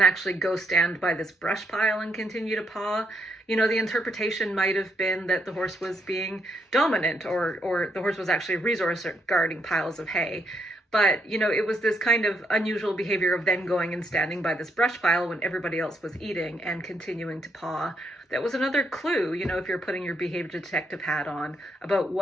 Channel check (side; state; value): both; normal; correlation 0.76